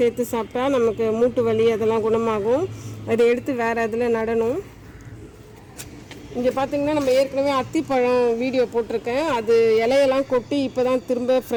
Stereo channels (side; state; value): both; identical; correlation 1.00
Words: சாப்பிட்டா நமக்கு மூட்டு வலி அதெல்லாம் குணமாகும். அதை எடுத்து வேறு அதில் நடணும். இங்கே பார்த்திங்கன்னா நம்ம ஏற்கனவே அத்திப்பழம் வீடியோ போட்டிருக்கேன். அது இலையெல்லாம் கொட்டி இப்போ தான் திரும்ப